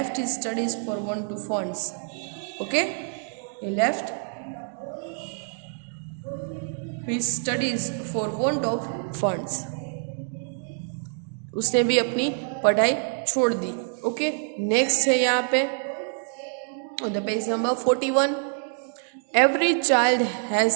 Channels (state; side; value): silent; left; 56 dB below the other